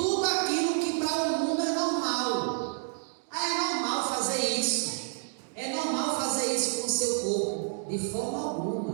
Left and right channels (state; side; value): silent; left; 58 dB below the other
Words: aquilo que para o mundo é normal. É normal fazer isso. É normal fazer isso com o seu corpo. De forma